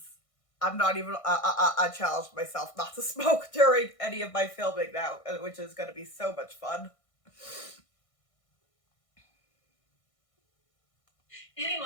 I'm not even, I challenged myself not to smoke during any of my filming now, which is going to be so much fun.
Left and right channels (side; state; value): right; late; 1.6 ms